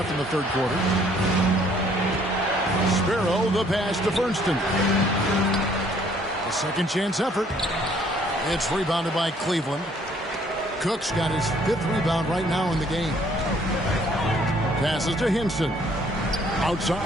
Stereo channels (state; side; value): normal; both; correlation 0.62